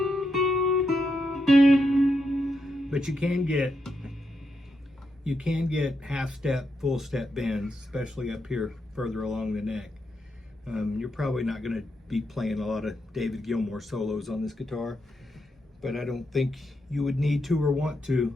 But you can get half step, full step bends, especially up here further along the neck. You're probably not going to be playing a lot of David Gilmour solos on this guitar, but I don't think you would need to or want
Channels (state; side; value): normal; both; correlation 0.83